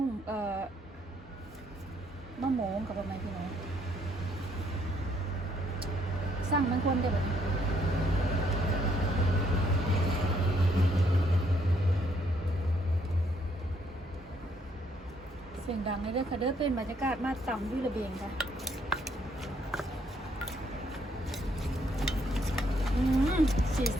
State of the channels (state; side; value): normal; both; correlation 0.70